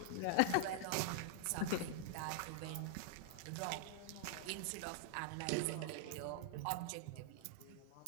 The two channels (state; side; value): different; both; correlation -0.01